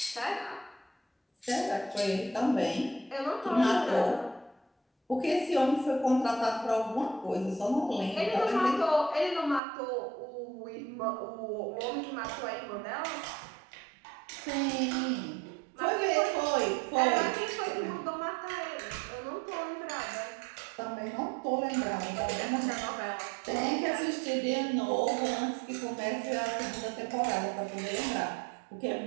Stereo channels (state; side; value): drops out; left; at 9.6 s